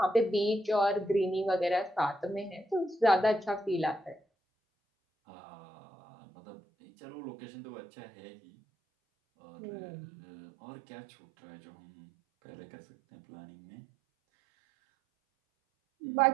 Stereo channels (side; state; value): left; drops out; at 4.2 s